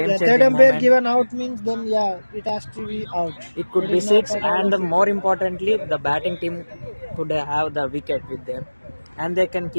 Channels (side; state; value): both; inverted; correlation -1.00